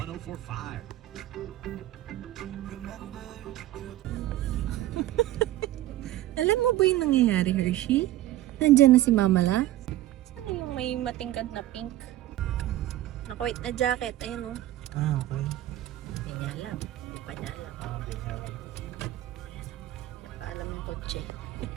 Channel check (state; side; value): quieter; left; 14.6 dB